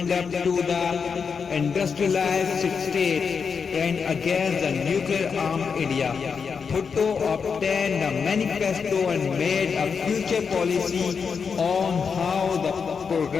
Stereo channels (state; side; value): quieter; right; 5.9 dB